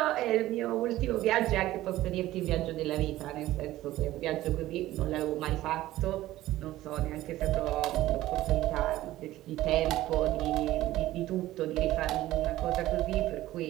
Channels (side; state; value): left; quieter; 15.6 dB